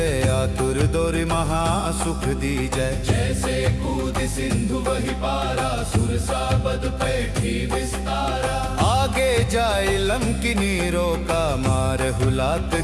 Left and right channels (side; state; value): both; identical; correlation 1.00